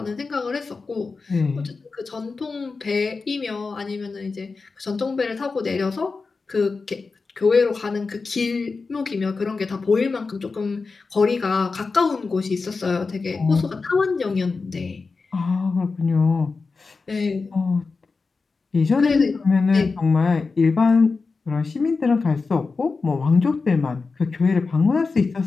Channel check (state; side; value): quieter; right; 4.3 dB